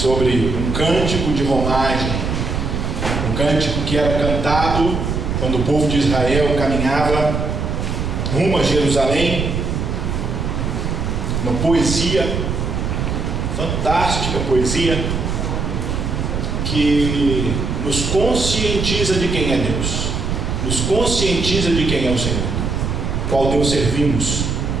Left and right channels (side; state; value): right; noise; rumble, 2 dB below the sound